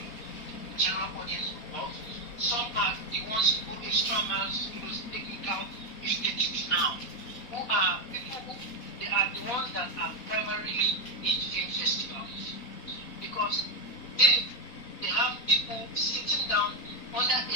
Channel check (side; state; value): right; late; 4.1 ms